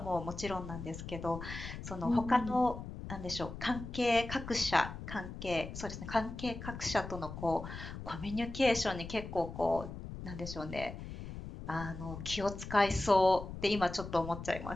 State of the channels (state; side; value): noise; left; rumble, 9 dB below the sound